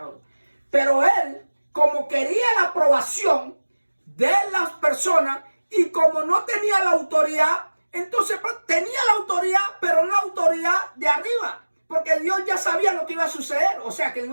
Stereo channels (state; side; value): inverted; both; correlation -1.00